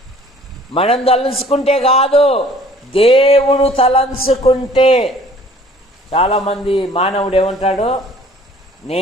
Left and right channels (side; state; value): both; normal; correlation 0.53